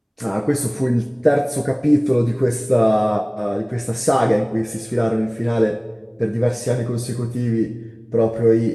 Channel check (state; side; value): identical; both; correlation 1.00